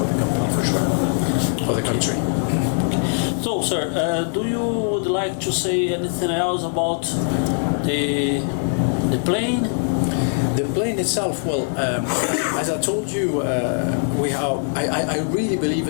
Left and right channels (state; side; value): silent; right; 65 dB below the other